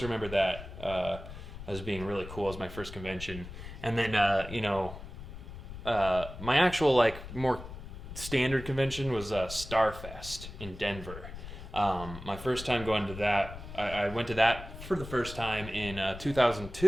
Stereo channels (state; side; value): noise; left; rumble, 12 dB below the sound